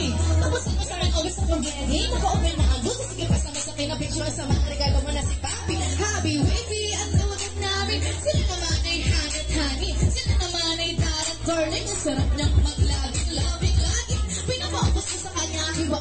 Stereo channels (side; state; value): both; identical; correlation 1.00